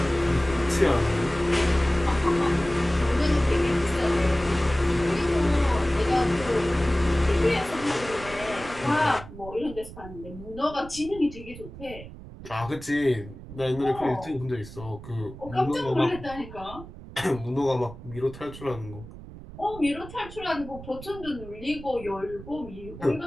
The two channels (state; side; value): noise; right; rumble, 15 dB below the sound